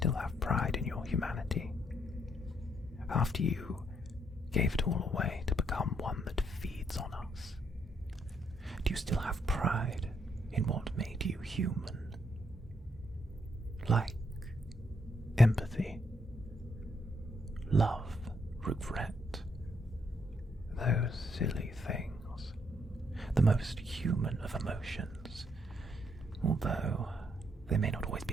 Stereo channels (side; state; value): both; normal; correlation 0.73